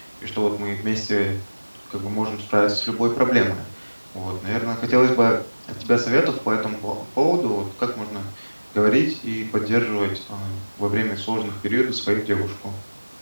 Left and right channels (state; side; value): inverted; both; correlation -1.00